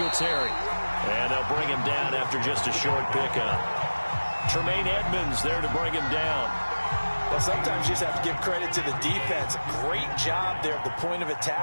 And they'll bring him down after just a short pickup. Tremaine Edmonds there to bring him down. Well, sometimes you just have to give credit to the defense. Great job there at the point of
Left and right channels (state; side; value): inverted; both; correlation -1.00